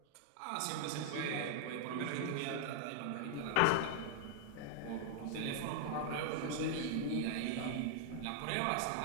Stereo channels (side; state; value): both; different; correlation 0.00